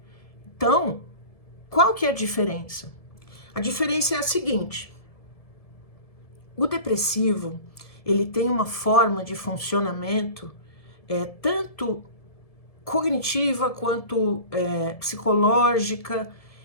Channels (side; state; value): right; late; 1.7 ms